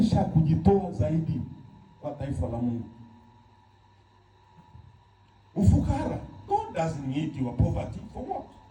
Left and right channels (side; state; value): both; identical; correlation 1.00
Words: kujitoa zaidi kwa taifa la Mungu. Ufukara, God doesn't need your poverty for what?